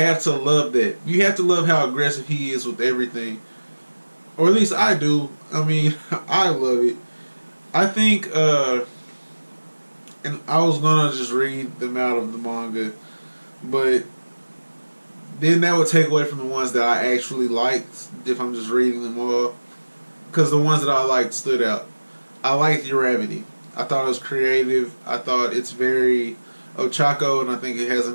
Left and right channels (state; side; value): inverted; both; correlation -1.00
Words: to love that. You have to love how aggressive he is with everything, or at least I do. I mean, I love it. I think, and I was gonna just read them out of the manga, but then that would take away from the ones that I actually liked if I'm just reading them all. Because the ones that I liked stood out. I liked Uravity. I thought it was creative. I thought it's very Ochako, and I think it has a